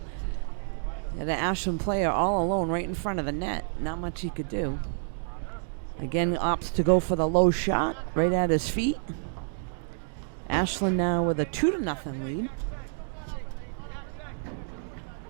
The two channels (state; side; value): silent; left; digital silence